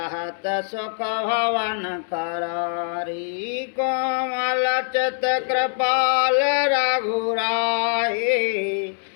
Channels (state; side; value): silent; right; digital silence